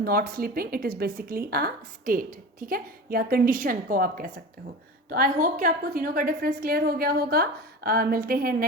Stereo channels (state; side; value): normal; both; correlation 0.32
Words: sleeping, it is basically a state, ठीक है, या कंडीशन को आप कह सकते हो। तो आई होप कि आपको तीनों का डिफरेंस क्लियर हो गया होगा। मिलते हैं